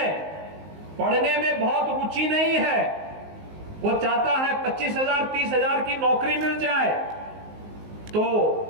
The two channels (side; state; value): left; late; 19 ms